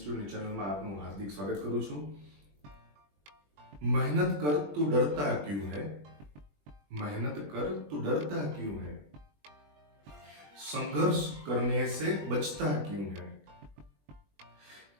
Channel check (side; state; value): left; late; 20 ms